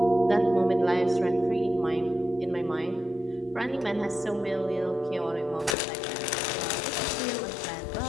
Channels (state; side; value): drops out; right; at 5.8 s